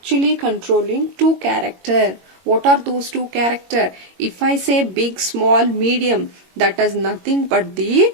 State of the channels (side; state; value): left; late; 22 ms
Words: controlling two characters. What are those two characters? If I say big, small, medium, that is nothing but the